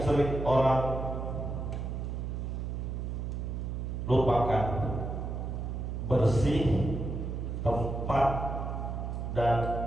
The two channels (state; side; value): noise; right; hum, 4 dB below the sound